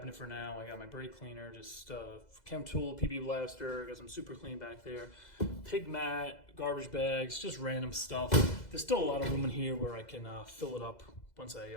for now. I got my brake cleaner, just chem tool, PB blaster, got some super clean back there, pig mat, garbage bags, just random stuff. There's still a lot of room in here where I can fill it up once I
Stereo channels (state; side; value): late; right; 2.0 ms